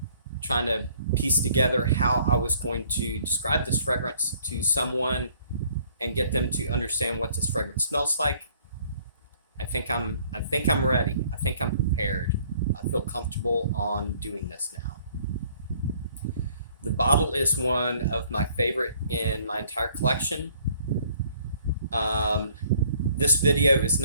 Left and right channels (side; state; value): both; inverted; correlation -0.60